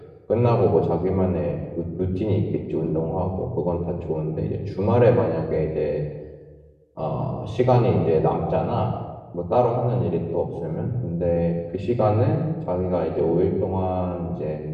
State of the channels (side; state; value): both; identical; correlation 1.00